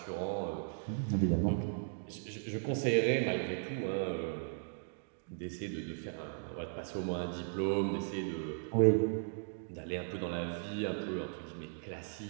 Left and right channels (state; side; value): silent; left; digital silence